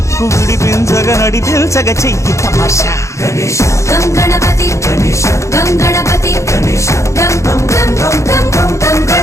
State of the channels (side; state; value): right; late; 0.14 ms